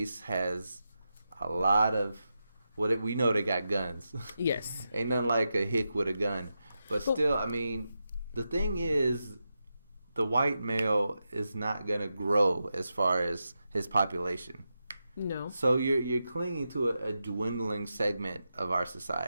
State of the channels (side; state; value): both; inverted; correlation -0.88